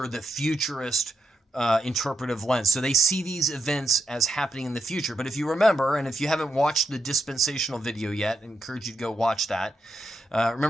the futurist interpretive lens. So they see these events as happening in the future. But if you remember, and if you haven't watched the dispensational video yet, I encourage you to go watch that.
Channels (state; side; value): normal; both; correlation 0.84